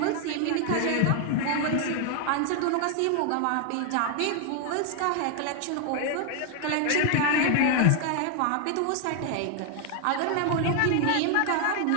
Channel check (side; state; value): both; different; correlation 0.00